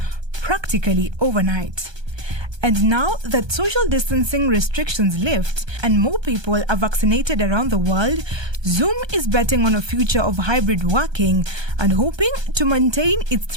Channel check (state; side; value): late; left; 1.2 ms